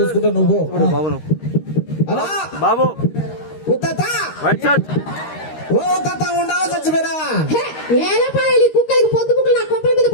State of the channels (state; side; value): late; right; 13 ms